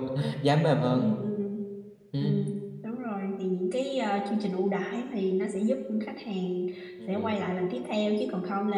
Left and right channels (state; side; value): identical; both; correlation 1.00